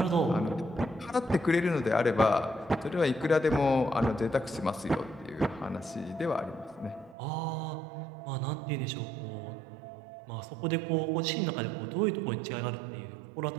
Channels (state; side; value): drops out; left; at 7.2 s